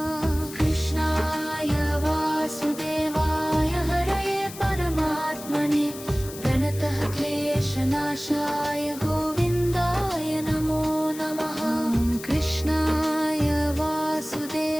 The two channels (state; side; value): noise; left; hiss, 14 dB below the sound